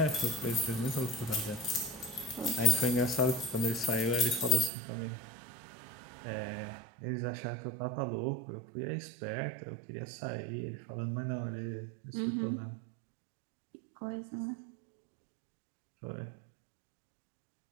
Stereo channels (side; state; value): left; drops out; at 4.7 s